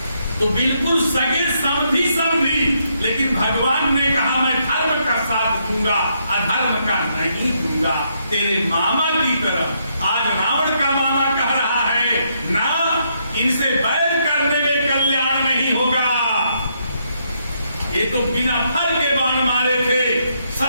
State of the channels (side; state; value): both; inverted; correlation -0.75